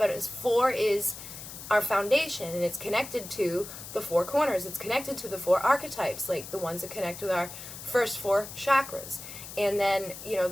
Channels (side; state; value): left; noise; hiss, 12 dB below the sound